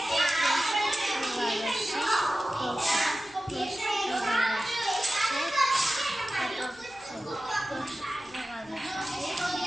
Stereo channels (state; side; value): noise; right; hum, 30 dB below the sound